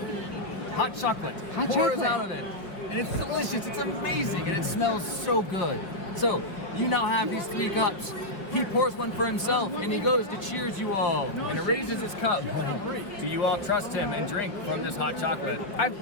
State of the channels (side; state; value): right; late; 4.6 ms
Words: Hot chocolate pours out of it. And it's delicious, it's amazing, and it smells so good. So, you now have these 3 cups. He pours one for himself, and he goes to cheers you all, and raises his cup. Do you all trust him and drink from this hot chocolate? I'm